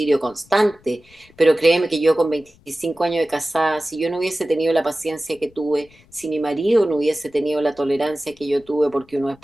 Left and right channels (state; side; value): noise; left; rumble, 29 dB below the sound